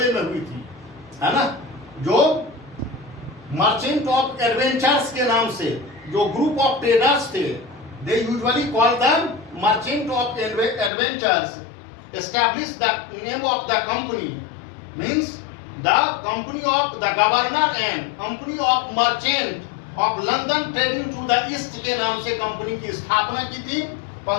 में हुई थी, है ना। जो मर्चेंट ऑफ एडवेंचर्स के नाम से जो ग्रुप ऑफ ट्रेडर्स थे, they usually call them merchant of adventures, establish the name of the company means the company of the governor and company of merchant of London trading to the east के नाम से company की स्थापना की थी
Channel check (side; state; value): right; drops out; at 10.9 s